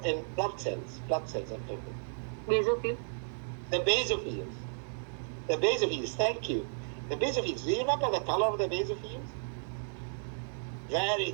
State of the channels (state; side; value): silent; left; 56 dB below the other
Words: in blood cells, I'm talking. Basophil. The basophils. Thank you. The basophils. Do you remember the color of the basophils? Very